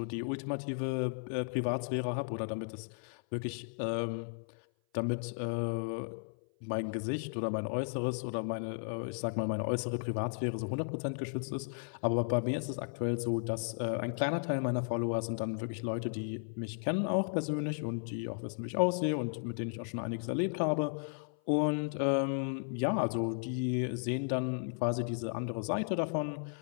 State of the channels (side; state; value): right; silent; 55 dB below the other